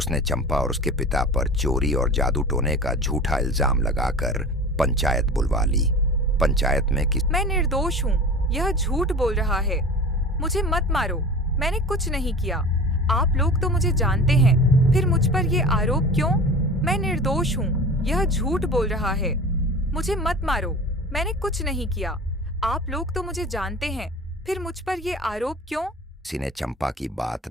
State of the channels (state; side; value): normal; both; correlation 0.36